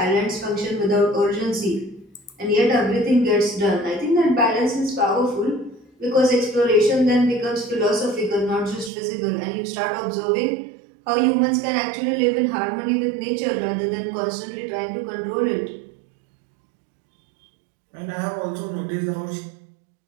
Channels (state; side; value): drops out; left; at 8.9 s